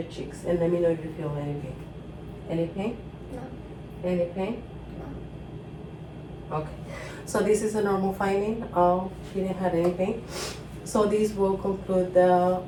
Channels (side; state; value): both; identical; correlation 1.00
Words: cheeks, and let me know if you feel any pain. Any pain? No. Any pain? No. Okay, so this is a normal finding. She didn't have any pain. So this will conclude the